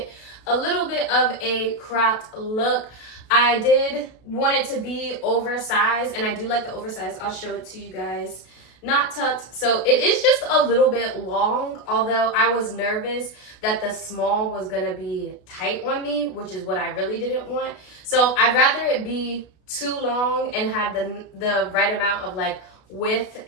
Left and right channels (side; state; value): right; late; 32 ms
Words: a little bit of a cropped look. I did want it to be oversized, and I do like the oversized. I'll show it to you guys. Not tucked, so it is just a little bit long, although I was nervous that the small was gonna be tight on me, which is what I really didn't want. So I'd rather it be too long and have the right amount of width